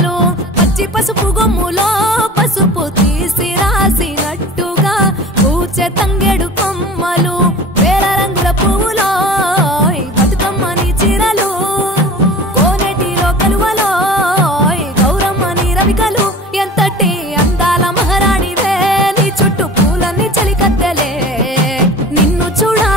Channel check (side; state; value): both; normal; correlation 0.40